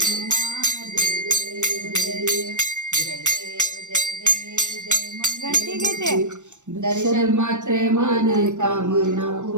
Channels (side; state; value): left; late; 0.84 ms